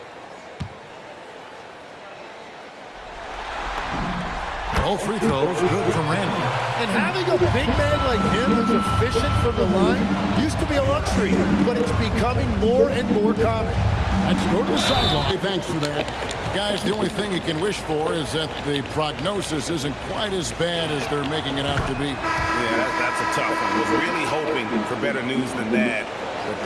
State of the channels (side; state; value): both; identical; correlation 1.00